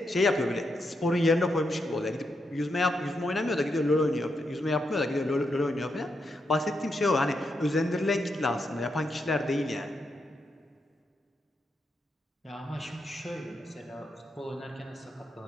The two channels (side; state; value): both; normal; correlation 0.83